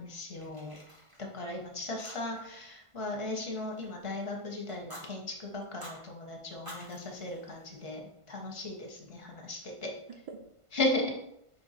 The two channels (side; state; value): left; late; 1.5 ms